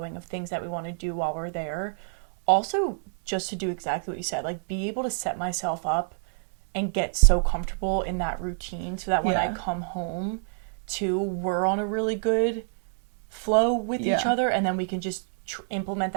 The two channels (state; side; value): silent; left; 60 dB below the other